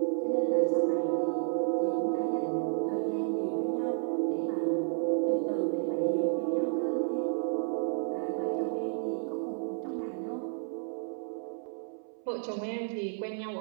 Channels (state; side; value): silent; left; 57 dB below the other